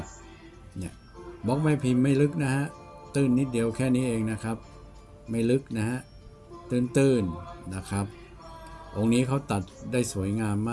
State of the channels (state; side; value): identical; both; correlation 1.00